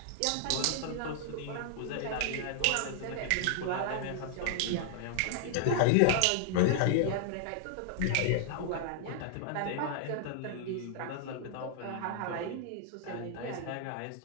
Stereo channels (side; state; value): both; different; correlation -0.01